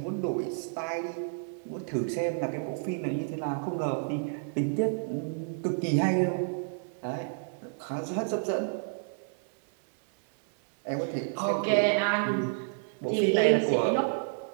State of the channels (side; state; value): left; silent; 58 dB below the other